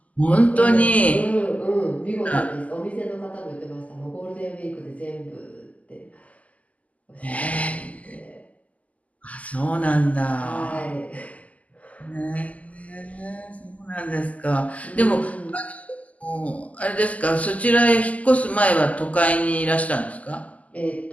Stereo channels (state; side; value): late; right; 0.072 ms